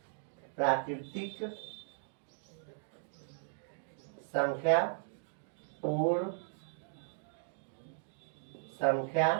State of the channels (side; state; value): left; silent; digital silence